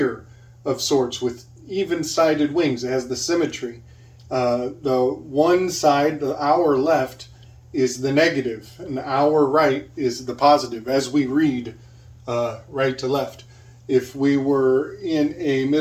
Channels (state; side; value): identical; both; correlation 1.00